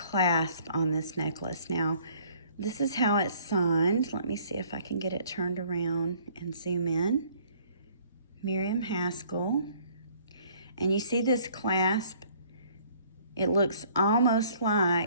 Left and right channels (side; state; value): both; inverted; correlation -0.59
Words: on this necklace. Now, this is how it's signed. Let me see if I can get it turned around and zoom in. Miriam Haskell. And you see this clasp? It looks almost